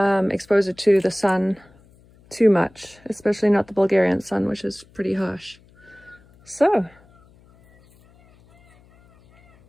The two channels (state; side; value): noise; left; hum, 29 dB below the sound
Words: it to the sun too much, especially not the Bulgarian sun, which is pretty harsh. So